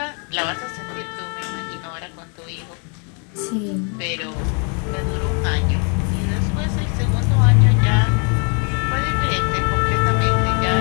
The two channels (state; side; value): quieter; right; 37.9 dB